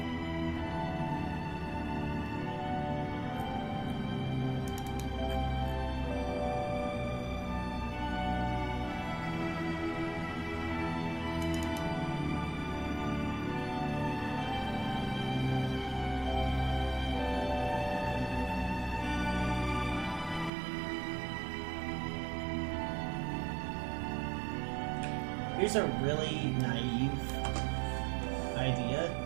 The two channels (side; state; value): left; drops out; at 20.5 s